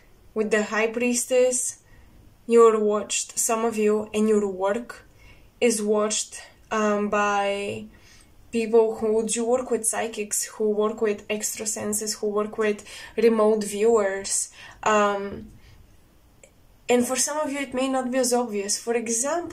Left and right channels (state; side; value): identical; both; correlation 1.00